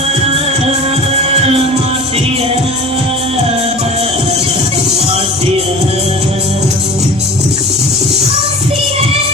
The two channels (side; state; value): right; noise; hum, 20 dB below the sound